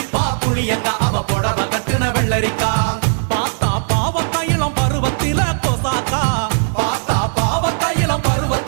புளியங்க அவ புடவ கட்டுன வெள்ளரிக்கா பார்த்தா பாவக்காயிலம் பருவத்தில கொசாக்கா பார்த்தா பாவக்காயிலம்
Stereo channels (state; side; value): silent; left; 68 dB below the other